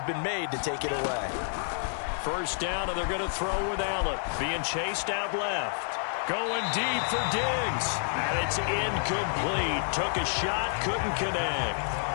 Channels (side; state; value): right; silent; digital silence